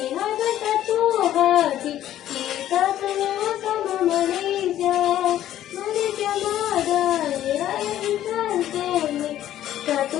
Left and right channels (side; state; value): right; quieter; 12.3 dB